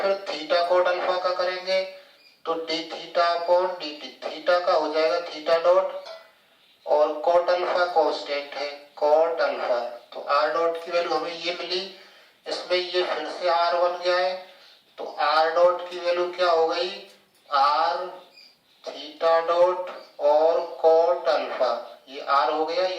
थीटा कोट अल्फा का करेंगे तो d theta upon dt। Theta का हो जाएगा थीटा डॉट और कोट अल्फा कांस्टेंट है, कोट अल्फा। तो r डॉट की वैल्यू हमें ये मिली। इसमें ये फिर से r बन गया है तो r डॉट की वैल्यू क्या हो गई? r थीटा डॉट और कोट अल्फा, ये आर हो गया,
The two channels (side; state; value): both; identical; correlation 1.00